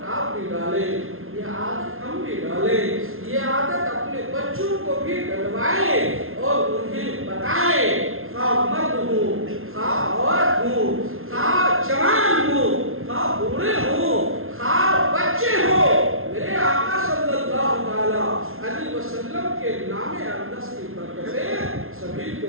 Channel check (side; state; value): left; late; 0.61 ms